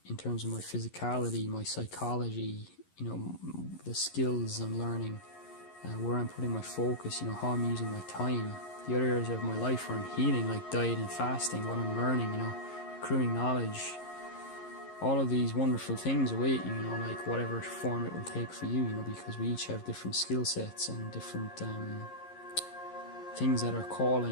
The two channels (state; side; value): late; right; 11 ms